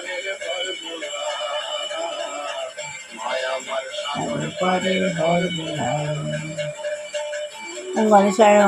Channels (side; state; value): both; identical; correlation 1.00